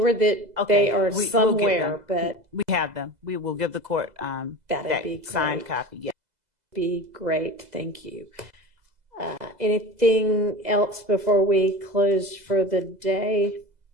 that they are we'll get somewhere, them. but we have them. We will give the court that be signed great. copy. Yeah. Be great. Thank you. Anything else before we close for the day?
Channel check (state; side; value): late; left; 2.0 ms